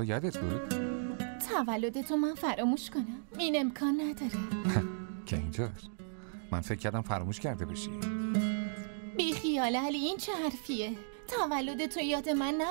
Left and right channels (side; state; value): left; silent; digital silence